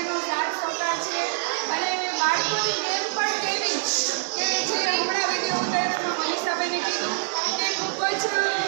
સાથ સહકાર છે અને બાળકોની ગેમ પણ કેવી કે જે હમણાં વિડીયો ઉતાર્યામાં મનીષાબેને કીધું કે ખૂબ જ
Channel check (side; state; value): left; silent; 62 dB below the other